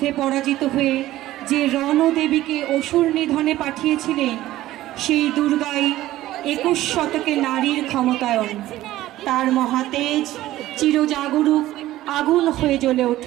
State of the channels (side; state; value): left; quieter; 15.2 dB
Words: পরাজিত হয়ে যে রণদেবীকে অসুর নিধনে পাঠিয়েছিলেন, সেই দুর্গাই 21 শতকে নারীর ক্ষমতায়ন। তার মহাতেজ চিরজাগরুক আগুন হয়ে জ্বলে